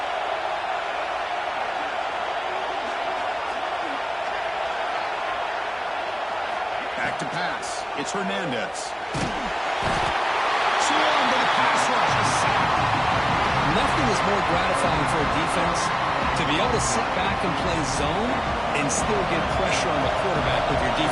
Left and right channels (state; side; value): identical; both; correlation 1.00